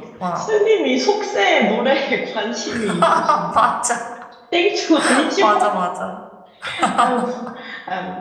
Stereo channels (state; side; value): identical; both; correlation 1.00